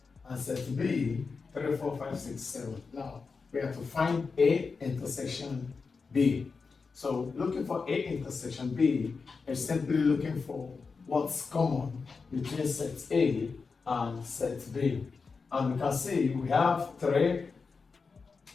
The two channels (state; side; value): quieter; right; 4.8 dB